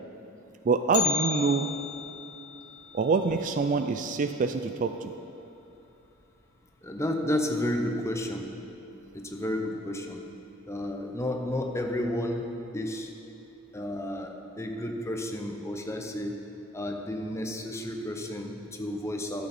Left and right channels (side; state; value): both; normal; correlation 0.44